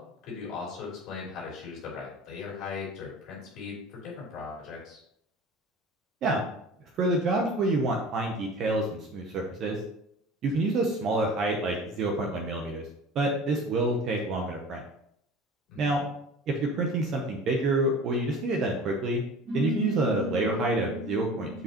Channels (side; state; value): both; normal; correlation 0.40